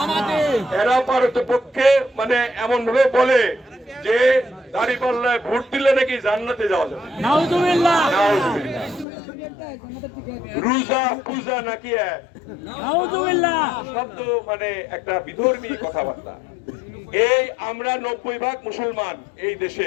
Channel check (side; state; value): right; drops out; at 9.1 s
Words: এরা পারতপক্ষে মানে এমন ভাবে বলে যে দাঁড়িপাল্লায় ভোট দিলে নাকি জান্নাতে যাওয়া যাবে। নাউজুবিল্লাহ। নাউজুবিল্লাহ। রোজা পূজা নাকি নাউজুবিল্লাহ শব্দ মানে একটা বিধর্মী কথাবার্তা। এই আমরা 90% মুসলমান এই